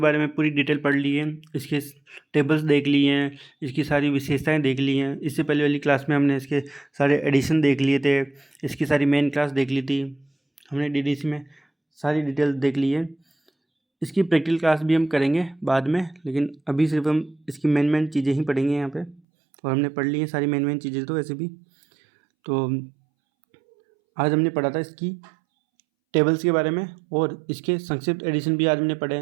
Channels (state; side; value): drops out; left; at 19.2 s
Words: में पूरी डिटेल पढ़ ली है, इसके टेबल्स देख लिए हैं, इसकी सारी विशेषताएं देख ली हैं। इससे पहले वाली क्लास में हमने इसके सारे एडिशन देख लिए थे, इसकी सारी मेन क्लास देख ली थी, हमने डीडीसी में सारी डिटेल देख ली है। इसकी प्रैक्टिकल क्लास भी हम करेंगे बाद में, लेकिन अभी सिर्फ हम इसकी मेन चीज़ें ही पढ़ेंगे यहाँ पे। और हमने पढ़ ली है सारी मेन चीज़ें तो वैसे भी। तो आज हमने पढ़ा था इसकी टेबल्स के बारे में और इसके संक्षिप्त एडिशन भी आज हमने पढ़े